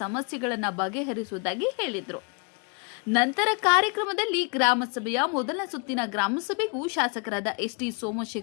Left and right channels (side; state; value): right; quieter; 35.5 dB